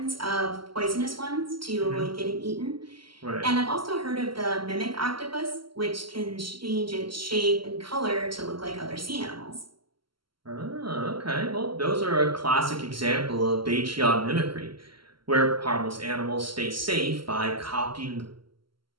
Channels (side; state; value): left; late; 0.74 ms